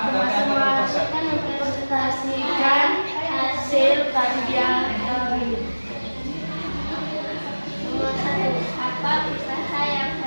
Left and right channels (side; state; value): both; inverted; correlation -1.00